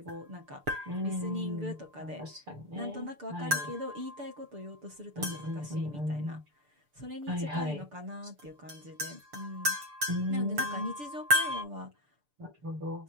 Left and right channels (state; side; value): late; left; 6.8 ms